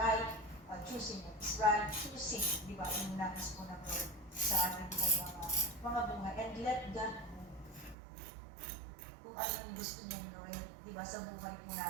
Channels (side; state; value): left; drops out; at 8.0 s